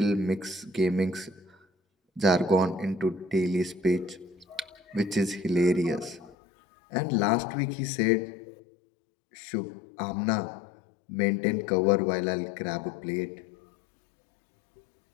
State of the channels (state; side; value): drops out; right; at 6.4 s